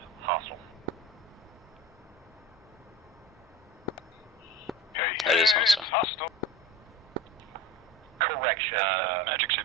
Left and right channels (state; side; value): normal; both; correlation 0.33